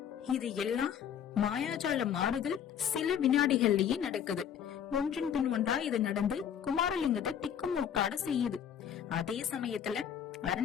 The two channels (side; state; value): right; quieter; 8.8 dB